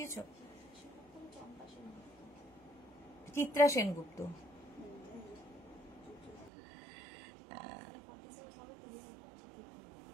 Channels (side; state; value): left; drops out; at 6.5 s